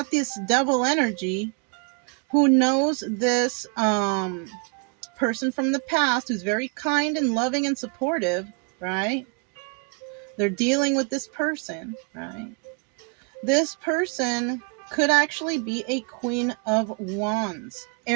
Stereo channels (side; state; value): left; quieter; 35.7 dB